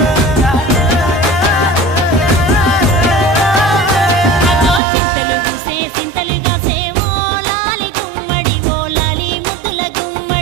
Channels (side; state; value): left; drops out; at 4.8 s